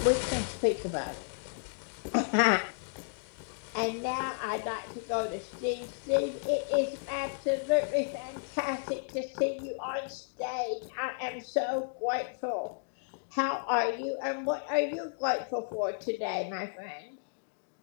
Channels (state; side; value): silent; right; digital silence